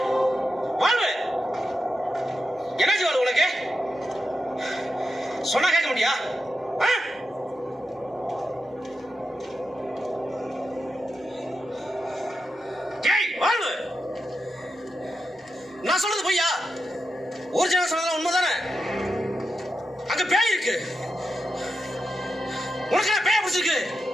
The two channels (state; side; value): normal; both; correlation 0.88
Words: வாழ்வு என்னாச்சு வாழ்வு உனக்கு? சொன்னா கேட்க முடியா? வாழ்வு நான் சொல்றது பொய்யா? ஒரிஜினல் சொன்னது உண்மைதானே? அங்க பேய் இருக்கு. உனக்கு பேய பிடிச்சிருக்கு.